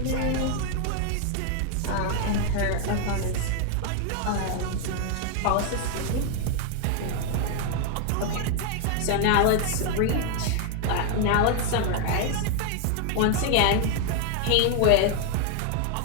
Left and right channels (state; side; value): different; both; correlation 0.00